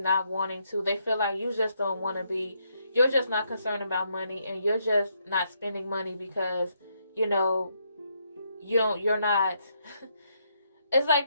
wanting to. They feel like you just don't want to be, you're just not concerned about money, and you're just not spending money because, you're not, it's like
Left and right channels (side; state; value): both; inverted; correlation -0.76